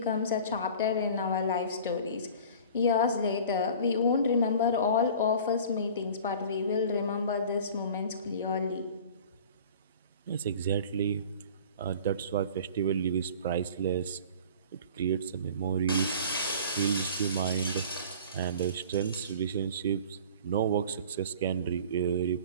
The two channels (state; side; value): inverted; both; correlation -0.43